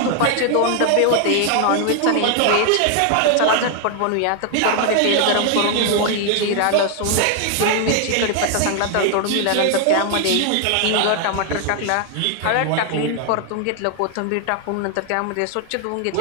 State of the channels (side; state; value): both; different; correlation 0.00